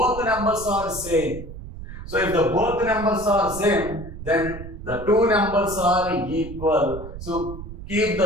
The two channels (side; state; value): right; noise; rumble, 11 dB below the sound